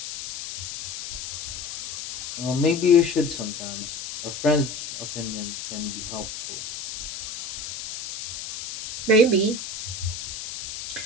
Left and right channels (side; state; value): left; noise; hiss, 8 dB below the sound